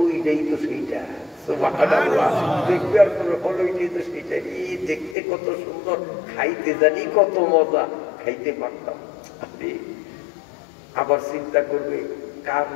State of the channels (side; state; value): right; drops out; at 5.2 s